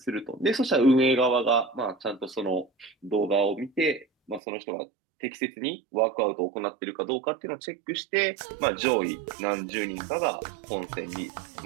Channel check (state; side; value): drops out; left; at 4.4 s